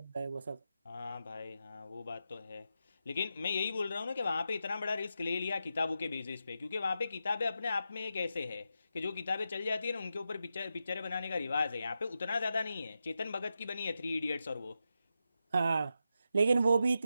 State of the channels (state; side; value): inverted; both; correlation -0.87